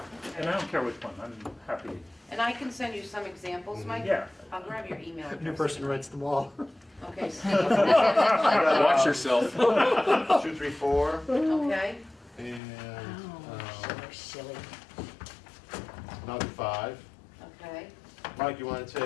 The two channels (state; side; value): drops out; right; at 12.6 s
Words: And I don't care which one, I'm happy. And I can send you some examples, Mike? Yeah. I'll grab your email address. New person writes them all. Okay, Steve. Watch yourself. 2, 3, 4, Okay, and Silly. another 5. okay. Mike, you want to